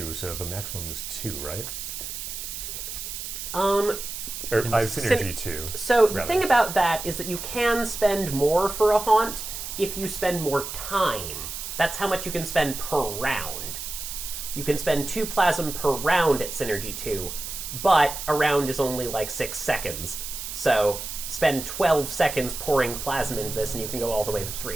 so the maximum is 2, right? Or I have Synergy 2. So the rather. thing about that is that you can spend more for a haunt if you spend more time. That's how much you can spend per round. You can spend 2 plasm per round at Synergy 2, but a round is only like 6 seconds. So spend 12 seconds pouring plasm into this and you can go all the way to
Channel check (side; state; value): right; noise; hiss, 7 dB below the sound